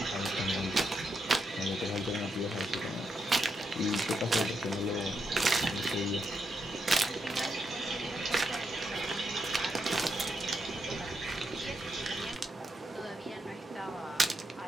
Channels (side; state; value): both; normal; correlation 0.82